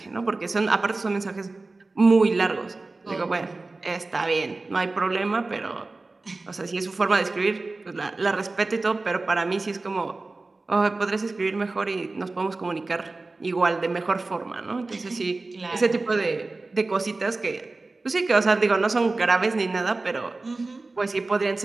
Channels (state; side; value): quieter; left; 3.4 dB